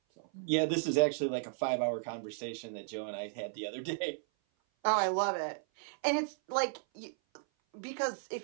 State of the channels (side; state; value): left; silent; 55 dB below the other